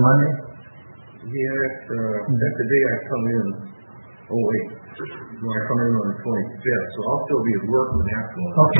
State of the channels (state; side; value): inverted; both; correlation -1.00